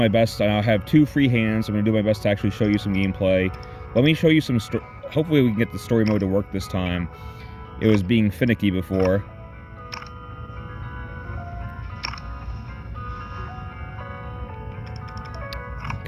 best. I have 2 free hands. I'm going to do my best to actually show you some gameplay. Let me show you some... Hopefully we can get the story mode to work this time. It was being finicky before.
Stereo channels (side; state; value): both; identical; correlation 1.00